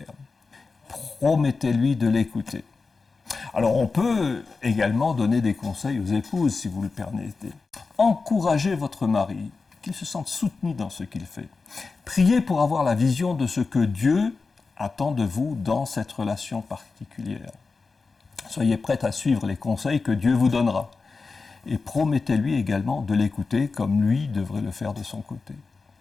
Promettez-lui de l'écouter. Alors on peut également donner des conseils aux épouses, si vous le permettez. Encouragez votre mari, qu'il se sente soutenu dans ce qu'il fait. Priez pour avoir la vision de ce que Dieu attend de vous dans cette relation particulière. Soyez prête à suivre les conseils que Dieu vous donnera. Et promettez-lui également de l'écouter comme lui devrait le faire de son côté.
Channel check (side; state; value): right; quieter; 4.3 dB